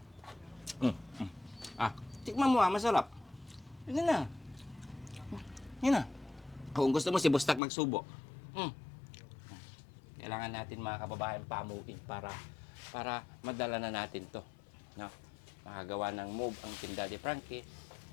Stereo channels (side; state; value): right; drops out; at 7.6 s